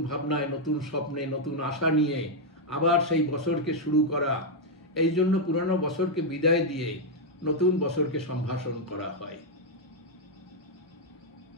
ভাবনায়, নতুন স্বপ্নে, নতুন আশা নিয়ে আবার সেই বছরকে শুরু করা, এই জন্য পুরনো বছরকে বিদায় দিয়ে নতুন বছরকে সম্ভাষণ করা হয়।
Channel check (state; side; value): normal; both; correlation 0.00